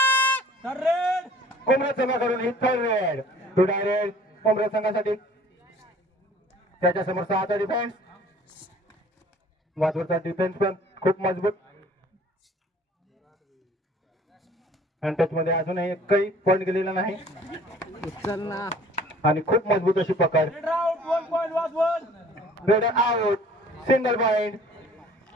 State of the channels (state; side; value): normal; both; correlation 0.52